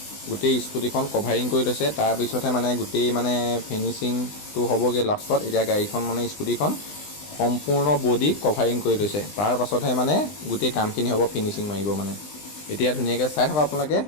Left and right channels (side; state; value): right; late; 20 ms